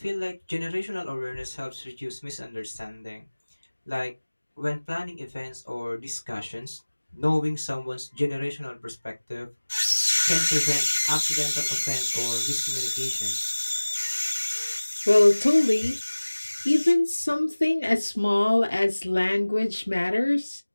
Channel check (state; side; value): inverted; both; correlation -1.00